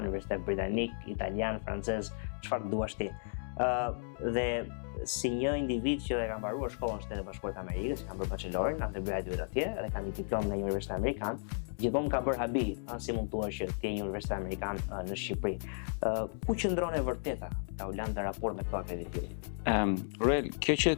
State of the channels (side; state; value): right; silent; digital silence